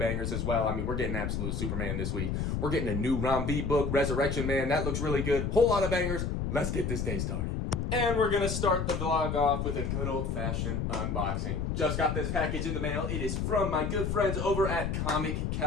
as well. I mean, we're getting Absolute Superman this week. We're getting a new Rom V book, Resurrection Man. That looks really good. Whole lot of bangers. Let's get this day started. And we're going to start the vlog off with a good old-fashioned unboxing. Just got this package in the mail. It is from my good friends over at Comic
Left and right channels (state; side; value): noise; left; rumble, 1 dB below the sound